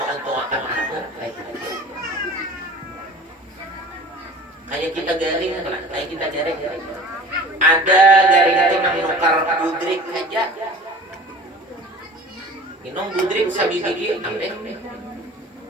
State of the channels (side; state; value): both; normal; correlation 0.41